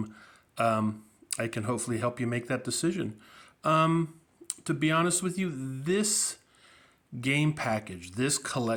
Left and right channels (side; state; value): both; identical; correlation 1.00